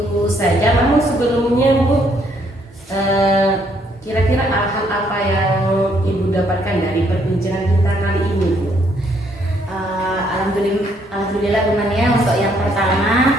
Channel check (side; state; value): both; normal; correlation 0.69